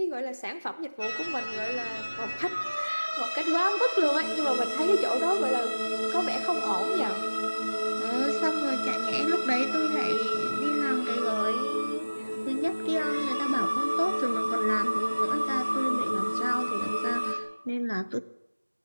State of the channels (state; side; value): inverted; both; correlation -1.00